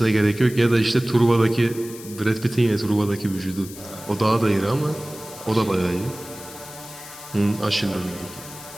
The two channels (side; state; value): left; noise; hiss, 16 dB below the sound